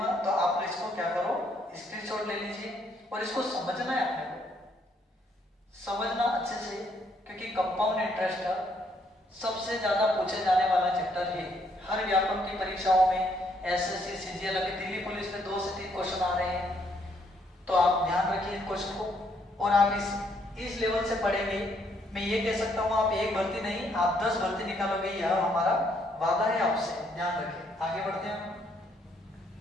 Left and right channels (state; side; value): normal; both; correlation 0.70